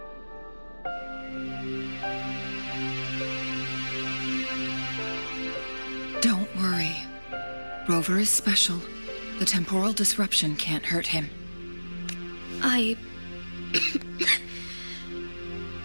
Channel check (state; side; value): inverted; both; correlation -1.00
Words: Don't worry. Rover is special. The temporal disruption can't hurt him.